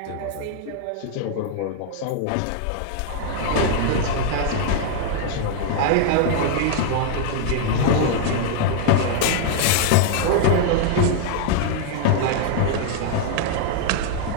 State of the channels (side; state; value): both; different; correlation 0.00